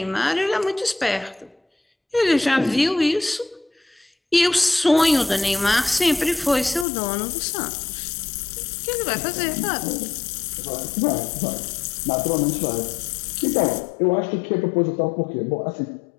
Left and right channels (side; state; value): right; drops out; at 6.9 s